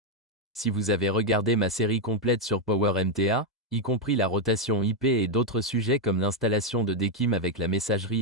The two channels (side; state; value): both; normal; correlation 0.02